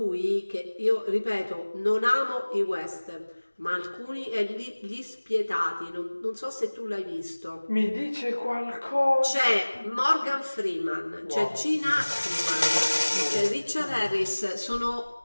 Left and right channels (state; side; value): inverted; both; correlation -1.00